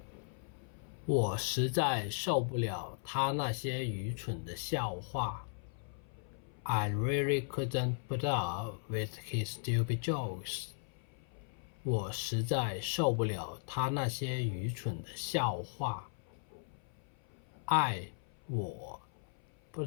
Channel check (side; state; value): right; silent; 53 dB below the other